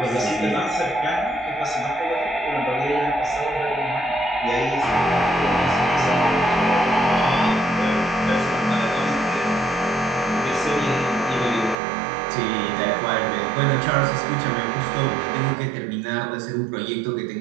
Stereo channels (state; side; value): drops out; left; at 11.8 s